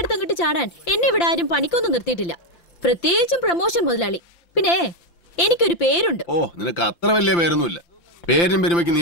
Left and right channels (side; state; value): right; late; 5.8 ms